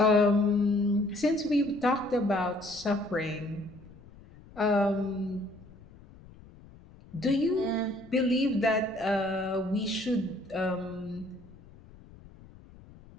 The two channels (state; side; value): noise; left; rumble, 22 dB below the sound